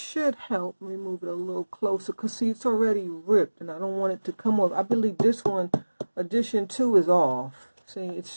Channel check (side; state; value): both; inverted; correlation -1.00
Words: help. Let me move it a little closer because see, it's already ripped and I don't want it to come off. I believe this one, edition 2, is off. See, it's